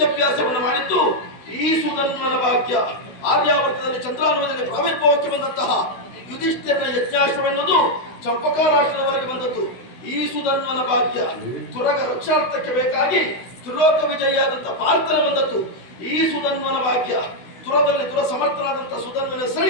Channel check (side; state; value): right; late; 16 ms